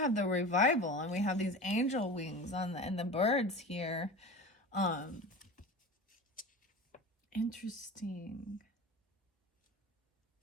the revival, and we have these angel wings on and the birds here. Interesting.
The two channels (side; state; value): both; normal; correlation 0.33